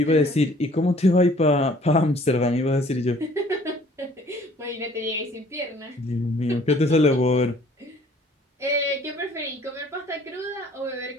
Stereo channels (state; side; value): normal; both; correlation 0.56